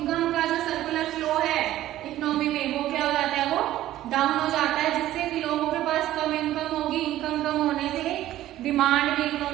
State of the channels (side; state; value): left; quieter; 14.0 dB